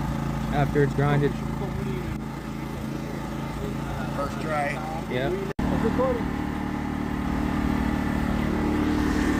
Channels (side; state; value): both; identical; correlation 1.00